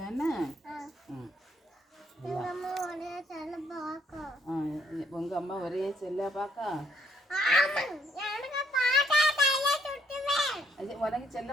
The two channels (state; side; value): normal; both; correlation 0.69